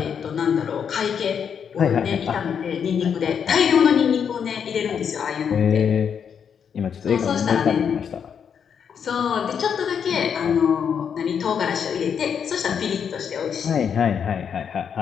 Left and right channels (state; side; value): quieter; right; 7.4 dB